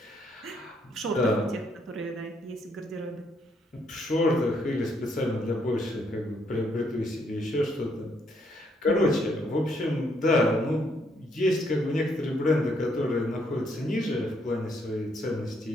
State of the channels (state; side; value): normal; both; correlation 0.72